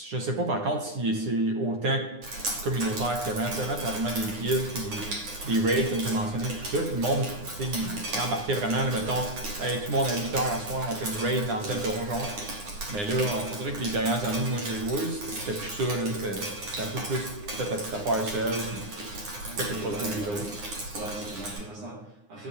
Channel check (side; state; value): left; late; 9.7 ms